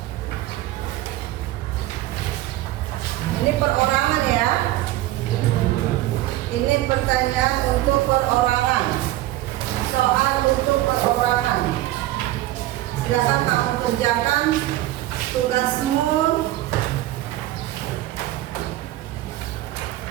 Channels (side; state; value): left; quieter; 15.7 dB